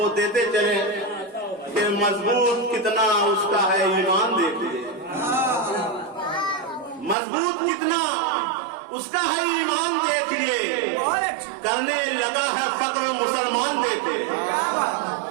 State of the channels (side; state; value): left; drops out; at 7.2 s